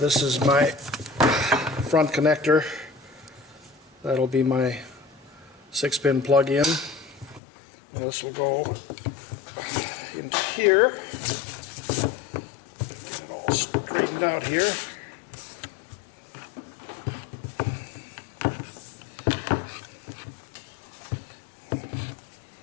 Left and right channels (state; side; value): drops out; right; at 7.4 s